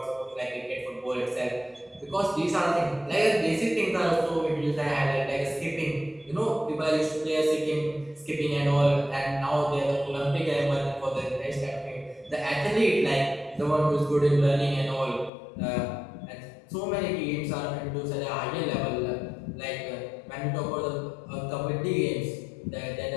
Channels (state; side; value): drops out; right; at 15.3 s